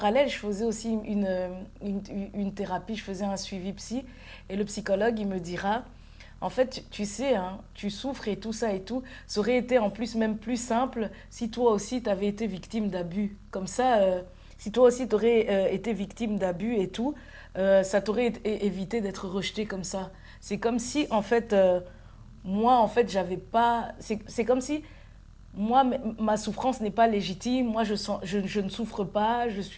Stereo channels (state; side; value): identical; both; correlation 1.00